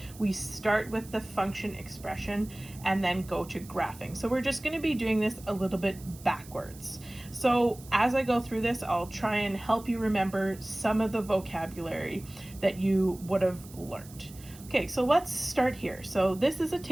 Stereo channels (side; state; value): right; noise; hiss, 20 dB below the sound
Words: we start with the function expression and then go to graphing. So we're just going to be doing this a little bit backwards. So as I go through this, I'll try and help you remember some of the vocabulary that you would have learned. Okay, so let's start here. So this is a